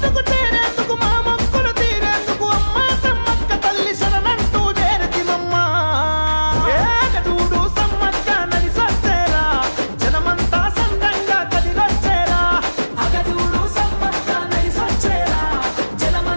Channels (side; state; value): both; inverted; correlation -1.00